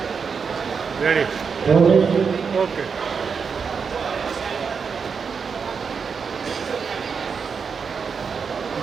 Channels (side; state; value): left; quieter; 5.9 dB